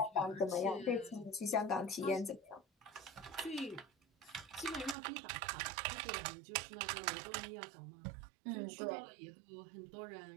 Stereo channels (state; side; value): drops out; left; at 5.0 s